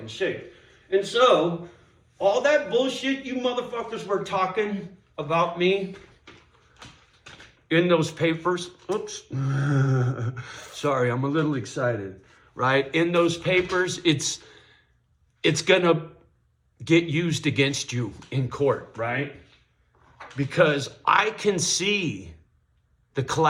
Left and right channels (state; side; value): identical; both; correlation 1.00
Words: shape. And so, all that bullshit you motherfuckers were talking about me in those papers, oops, sorry, I'm a little excited, right? In those papers, it's gonna get used against you in court, right? Because I can see the